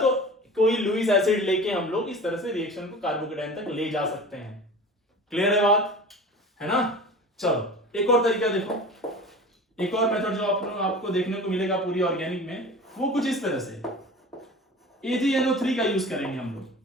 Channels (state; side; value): normal; both; correlation 0.38